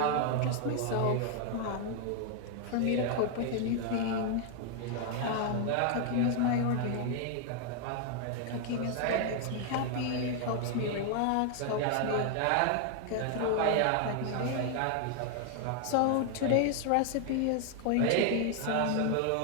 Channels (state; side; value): different; both; correlation 0.00